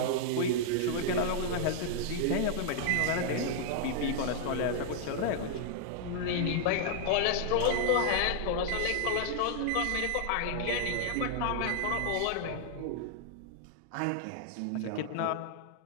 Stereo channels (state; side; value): different; both; correlation 0.00